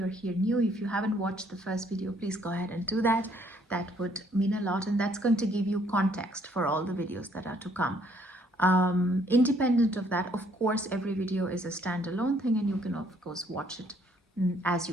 here new, if you haven't watched the first video, please go ahead and do that. That would mean a lot, and that's going to give you context for all the videos that are to come. Independent of that, of course, every video is a standalone thing, and you can of course watch it as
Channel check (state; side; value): normal; both; correlation 0.65